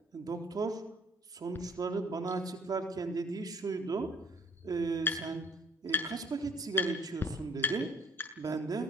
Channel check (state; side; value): normal; both; correlation 0.57